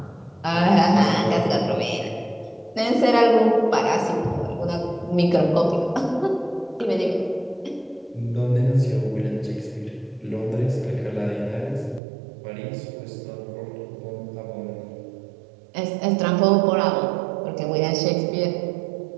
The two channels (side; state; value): left; drops out; at 12.0 s